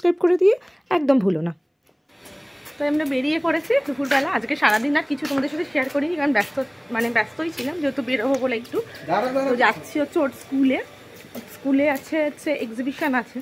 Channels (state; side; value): identical; both; correlation 1.00